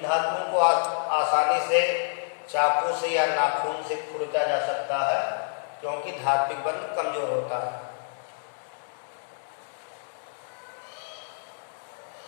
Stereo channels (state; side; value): silent; right; digital silence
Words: धातुओं को आसानी से चाकू से या नाखून से खुरचा जा सकता है क्योंकि धात्विक बंध कमजोर होता है।